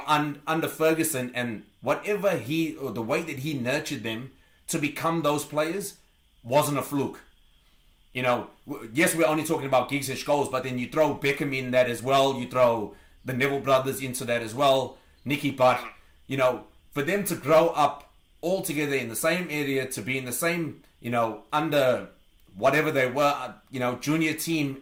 under Ferguson and whatever or the way that he nurtured them to become those players wasn't a fluke. Yes, we're only talking about Giggs and Scholes, but then you throw Beckham in that as well. You throw the Neville brothers into that as well. Nicky Butt. For them to grow up all together in the same area, to be in the same, under whatever they were, junior team,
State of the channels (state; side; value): identical; both; correlation 1.00